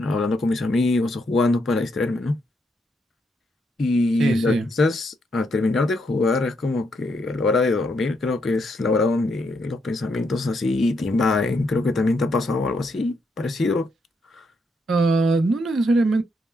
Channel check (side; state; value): both; normal; correlation 0.78